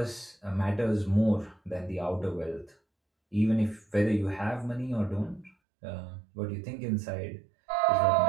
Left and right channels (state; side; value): drops out; left; at 5.5 s